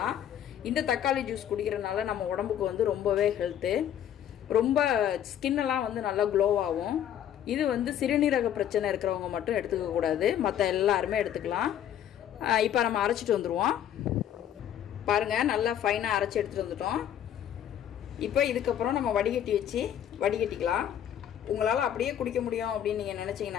இந்த தக்காளி ஜூஸ் குடிக்கிறதுனால நம்ம உடம்புக்கு வந்து ரொம்பவே ஹெல்த்து. ரொம்ப ஸ்கின்னெல்லாம் வந்து நல்லா க்ளோவாகும். இது வந்து சிறுநீரக பிரச்சனை இருக்கிறவங்க மட்டும் எடுத்துக்கக்கூடாது, மற்ற எல்லாருமே எடுத்துக்கலாம். இப்போ நம்ம அரைச்சிட்டு வந்துடுவோம். பாருங்கள், நல்லா ஃபைனாக அரைச்சி எடுத்துகிட்டு வந்துட்டோம். இப்போ இதுக்கப்புறம் நம்ம வடிகட்டி வச்சு வடிகட்டிக்கலாம். உங்களால் அப்படியே குடிக்க முடியும் அப்படின்னு நீங்கள்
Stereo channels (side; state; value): right; quieter; 10.3 dB